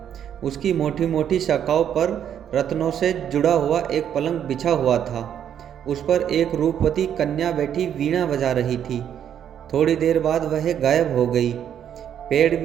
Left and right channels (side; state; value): left; quieter; 9.4 dB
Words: उसकी मोटी मोटी शाखाओं पर रत्नों से जुड़ा हुआ एक पलंग बिछा हुआ था। उस पर एक रूपवती कन्या बैठी वीणा बजा रही थी। थोड़ी देर बाद वह गायब हो गई। पेड़